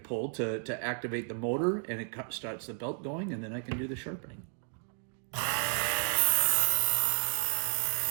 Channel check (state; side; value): silent; left; 56 dB below the other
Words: to activate the motor, and it starts the belt going, and then I can do the sharpening.